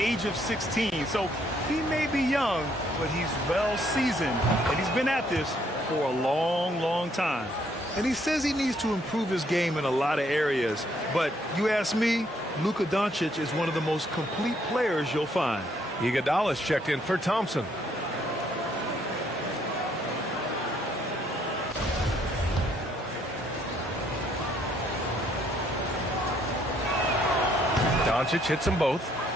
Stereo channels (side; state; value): both; normal; correlation 0.68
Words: of 16. So he may be young, but he's well seasoned. And he's been at this for a long, long time. And he says he needs to improve his game in a lot of areas. But you ask me, Luka Doncic is one of the most complete players you'll find. Iguodala's checked in for Thompson. Doncic hits them both.